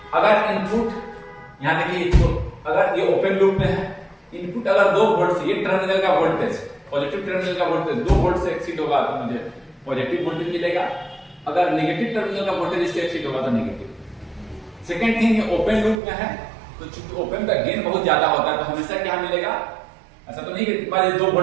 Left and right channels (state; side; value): drops out; left; at 16.0 s